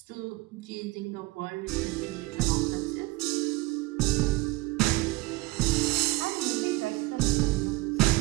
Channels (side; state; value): left; quieter; 21.2 dB